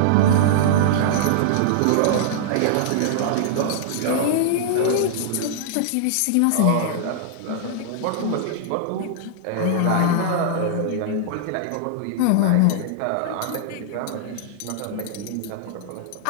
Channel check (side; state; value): both; different; correlation -0.01